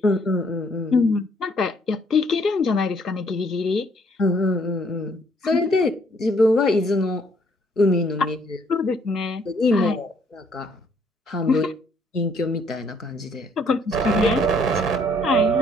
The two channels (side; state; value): both; normal; correlation 0.65